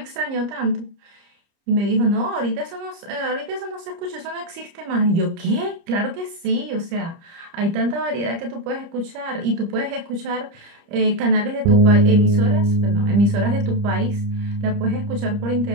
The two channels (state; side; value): late; left; 30 ms